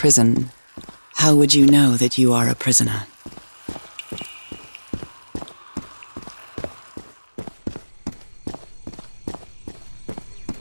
how would you know that you are a prisoner?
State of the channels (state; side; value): inverted; both; correlation -1.00